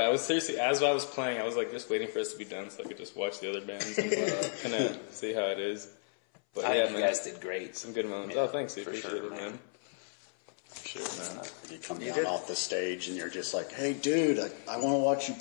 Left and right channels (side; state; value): right; silent; 55 dB below the other